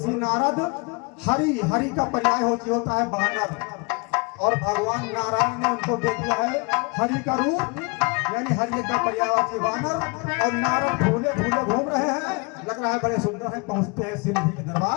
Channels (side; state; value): right; quieter; 30.8 dB